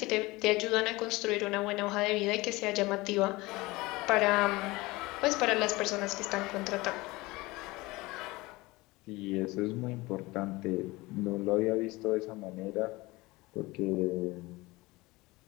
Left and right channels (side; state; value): right; quieter; 21.6 dB